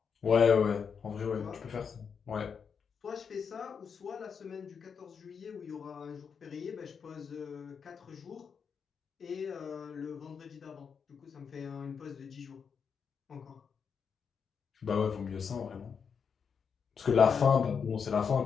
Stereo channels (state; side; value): quieter; right; 6.4 dB